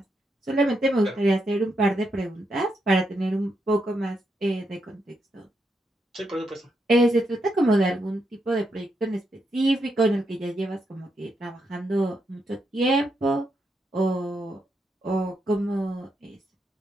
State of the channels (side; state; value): both; normal; correlation 0.81